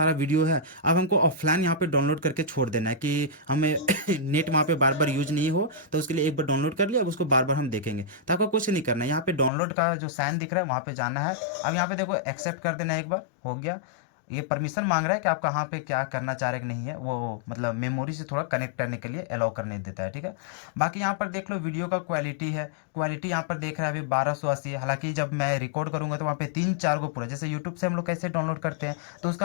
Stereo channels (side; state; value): right; drops out; at 9.5 s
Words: वीडियो है, अब हमको ऑफलाइन यहाँ पे डाउनलोड करके छोड़ देना है कि हमें नेट वहाँ पे बार बार यूज नहीं हो, तो उसके लिए एक बार डाउनलोड कर लिया, अब उसको बार बार हम देखेंगे। तो आपको कुछ नहीं करना है, यहाँ पे डाउनलोड का जो साइन दिख रहा है वहाँ पे जाना है। अब यहाँ पे देखो एक्सेप्ट कर देना है, एक बार हो गया। ये परमिशन मांग रहा है कि आप कहाँ पे क्या करना चाह रहे कि नहीं है, वो मतलब मेमोरी से थोड़ा कनेक्ट करने के लिए अलाउ करने देता है, ठीक है। बाकी यहाँ पर देख लो वीडियो का क्वालिटी है, क्वालिटी यहाँ पर देख रहा है अभी 1280 है। हालांकि जब मैं रिकॉर्ड करूँगा तो वहाँ पे 3-4 गो पूरा, जैसे यूट्यूब से हम लोग कैसे डाउनलोड करते हैं तो